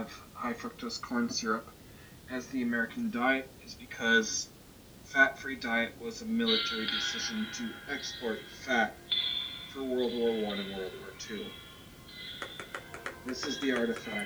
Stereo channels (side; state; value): both; identical; correlation 1.00